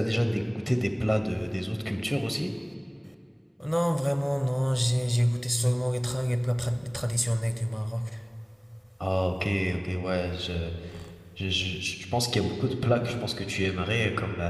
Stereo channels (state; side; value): identical; both; correlation 1.00